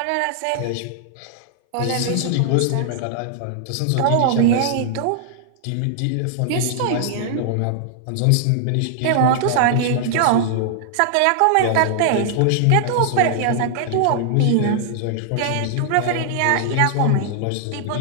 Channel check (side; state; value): both; different; correlation -0.01